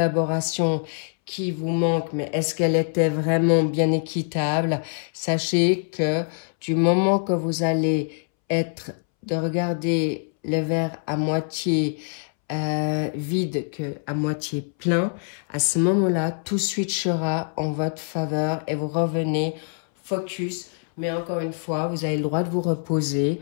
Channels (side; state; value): right; silent; 62 dB below the other